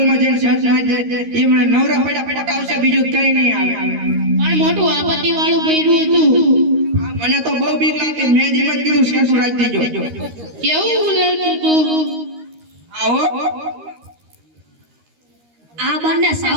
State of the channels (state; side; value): late; left; 13 ms